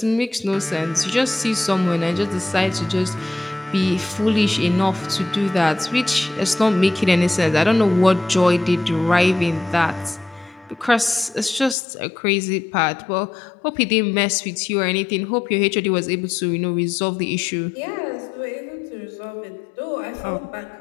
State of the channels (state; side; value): drops out; right; at 11.8 s